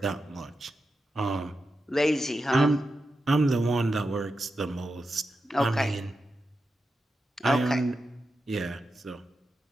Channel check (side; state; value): both; normal; correlation 0.89